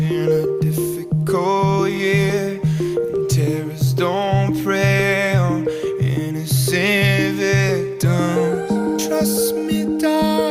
a difficult year, and terrorists don't prey on innocent victims. Trust me,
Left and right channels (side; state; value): both; identical; correlation 1.00